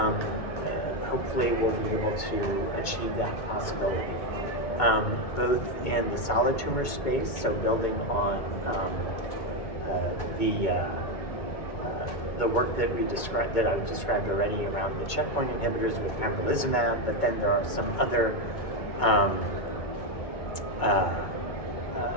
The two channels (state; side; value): late; right; 2.2 ms